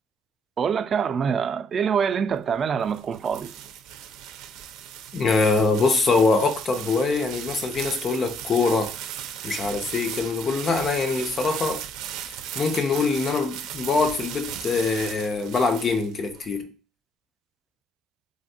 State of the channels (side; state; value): both; normal; correlation 0.68